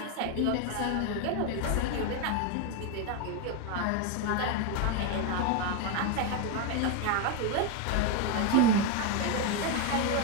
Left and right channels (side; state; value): both; different; correlation 0.02